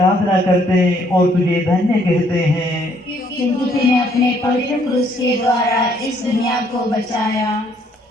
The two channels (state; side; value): normal; both; correlation 0.66